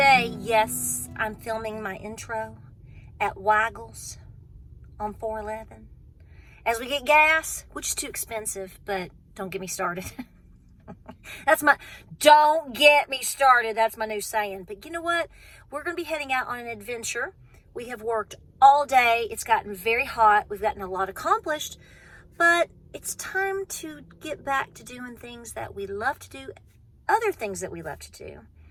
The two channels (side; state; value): both; identical; correlation 1.00